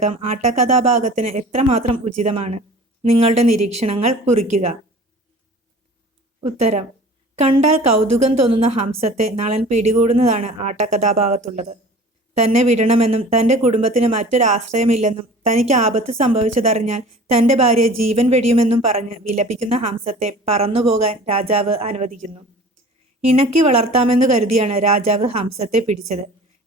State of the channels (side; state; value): both; normal; correlation 0.43